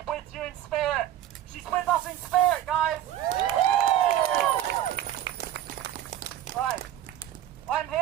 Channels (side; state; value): left; quieter; 11.9 dB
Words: with you in spirit. She's with us in spirit, guys! Right. I'm